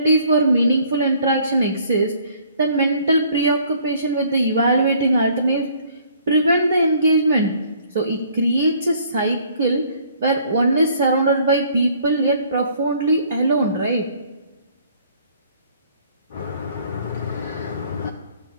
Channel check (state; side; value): inverted; both; correlation -0.60